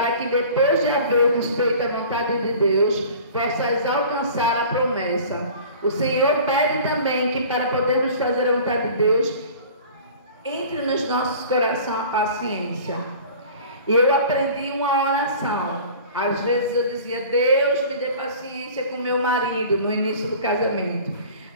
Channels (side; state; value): both; inverted; correlation -0.43